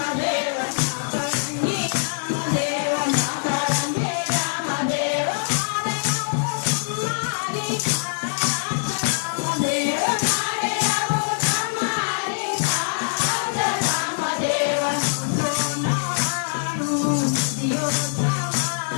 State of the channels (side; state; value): right; silent; digital silence